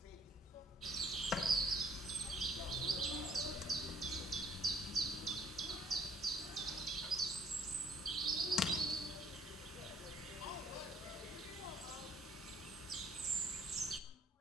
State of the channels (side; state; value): both; normal; correlation 0.61